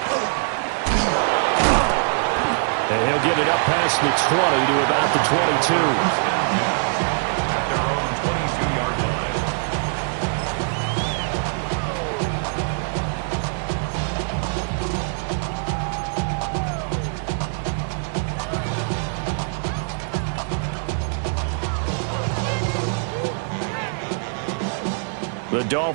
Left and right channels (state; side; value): silent; left; 63 dB below the other